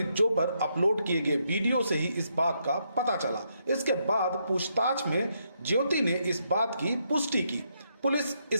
जो पर अपलोड किए गए वीडियो से ही इस बात का पता चला। इसके बाद पूछताछ में ज्योति ने इस बात की पुष्टि की। पुलिस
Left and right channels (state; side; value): inverted; both; correlation -0.78